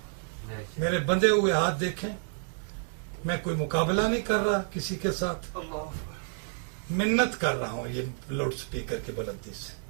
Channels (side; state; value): left; silent; digital silence